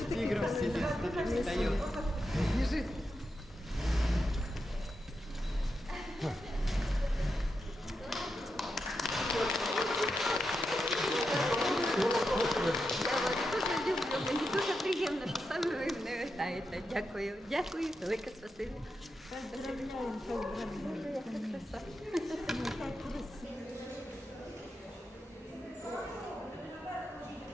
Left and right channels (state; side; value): normal; both; correlation 0.87